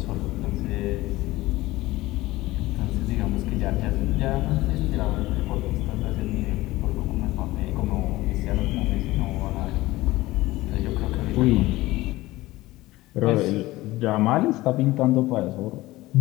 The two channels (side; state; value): right; quieter; 18.5 dB